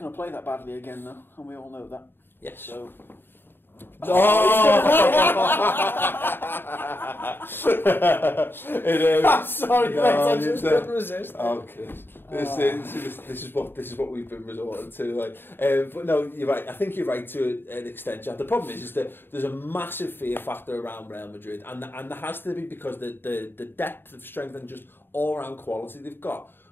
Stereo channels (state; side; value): late; right; 0.10 ms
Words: to play that badly again, though, and we all know that. Yes. So... Sorry, mate, I just couldn't resist. Oh, Chris. This is what we've been resorting to. Like, but no, you're right. I think you're right to an extent, Jack. The problem is that there's a massive fear factor around Real Madrid, and there has to be, because the depth of strength and just all round quality they've got.